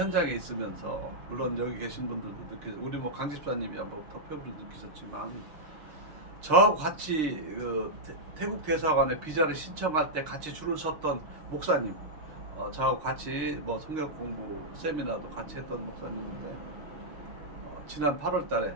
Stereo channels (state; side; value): late; left; 6.5 ms